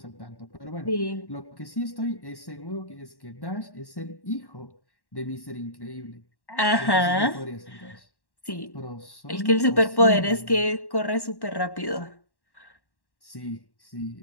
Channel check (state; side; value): late; right; 1.1 ms